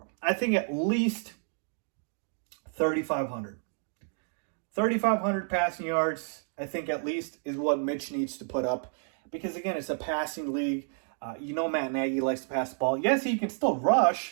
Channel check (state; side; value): silent; left; 58 dB below the other